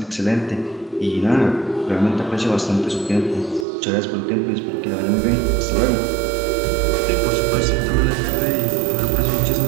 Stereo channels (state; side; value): drops out; left; at 3.7 s